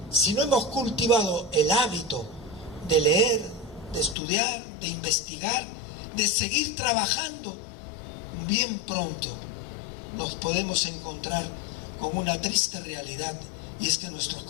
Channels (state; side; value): drops out; right; at 4.2 s